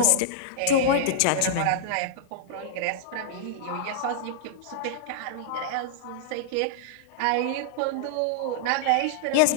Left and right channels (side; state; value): both; different; correlation -0.01